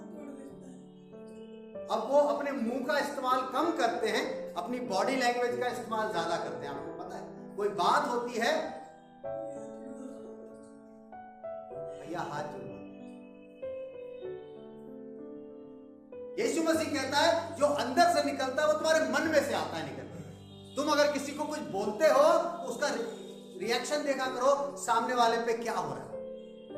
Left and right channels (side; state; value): both; identical; correlation 1.00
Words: अब वो अपने मुंह का इस्तेमाल कम करते हैं, अपनी बॉडी लैंग्वेज का इस्तेमाल ज्यादा करते हैं। आपको पता है, कोई बात होती है, भैया हाथ जोड़ो। यीशु मसीह कहता है जो अंदर से निकलता है वो तुम्हारे मन में से आता है, निकलता। तुम अगर किसी को कुछ बोलते हो तो उसका रिएक्शन देखा करो, सामने वाले पे क्या हो रहा है,